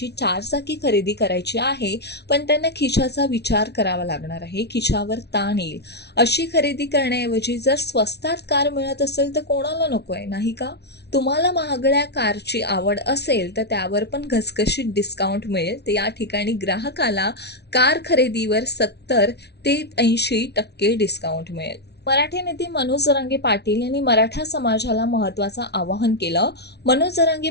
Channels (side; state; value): right; late; 0.49 ms